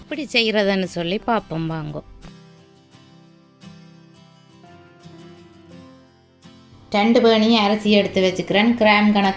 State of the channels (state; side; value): identical; both; correlation 1.00